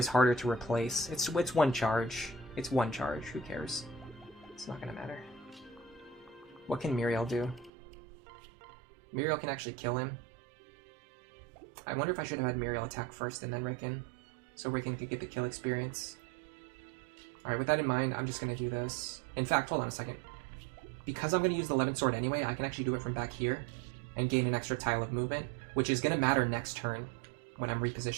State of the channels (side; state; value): left; drops out; at 7.7 s